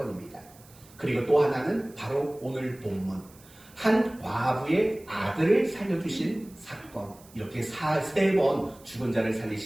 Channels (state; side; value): noise; right; hiss, 25 dB below the sound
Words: 그리고 또 하나는 바로 오늘 본문 한 과부의 아들을 살려주신 사건, 이렇게 3번 죽은 자를